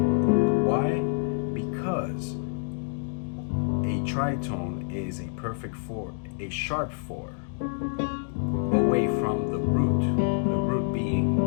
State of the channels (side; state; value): right; silent; 60 dB below the other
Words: Because a tritone is a perfect 4, a sharp 4, away from the root being